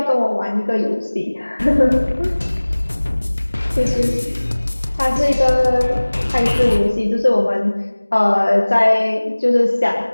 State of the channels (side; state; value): both; inverted; correlation -1.00